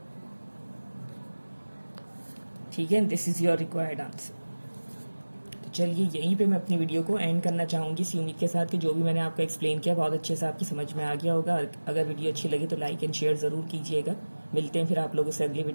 ठीक है, this is your required answer. तो चलिए यहीं पे मैं अपनी वीडियो को एंड करना चाहूंगी इसी उम्मीद के साथ कि जो भी मैंने आपको एक्सप्लेन किया बहुत अच्छे से आपकी समझ में आ गया होगा। अगर वीडियो अच्छी लगी तो लाइक एंड शेयर जरूर कीजिएगा। मिलते हैं फिर आप लोगों से अगली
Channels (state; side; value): inverted; both; correlation -1.00